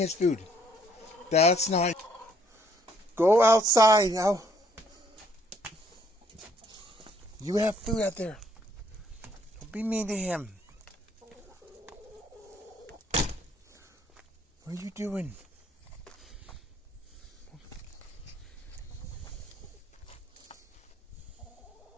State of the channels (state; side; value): normal; both; correlation 0.66